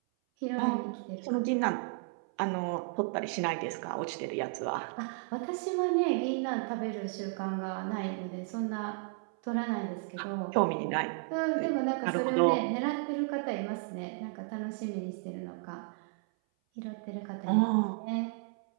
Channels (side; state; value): left; silent; 56 dB below the other